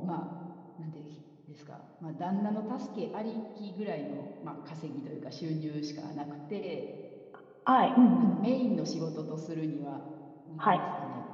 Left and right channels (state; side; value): identical; both; correlation 1.00